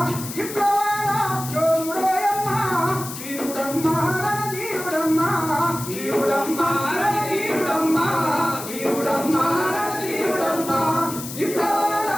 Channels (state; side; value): noise; left; hiss, 10 dB below the sound